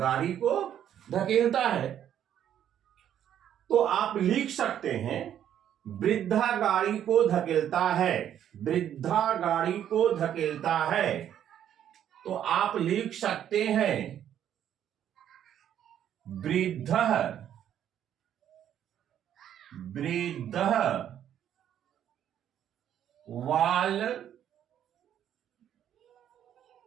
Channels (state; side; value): quieter; left; 10.2 dB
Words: को धकेलता है। तो आप लिख सकते हैं वृद्धा गाड़ी को धकेलता है, वृद्धा गाड़ी को धकेलता है। तो आप लिख सकते हैं वृद्धः, वृद्धः वाल